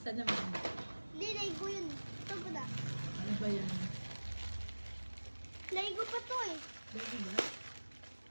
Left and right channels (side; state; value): both; inverted; correlation -1.00